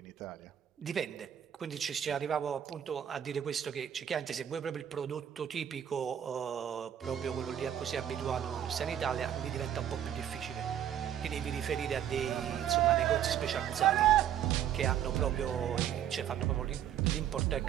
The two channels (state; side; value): quieter; left; 10.0 dB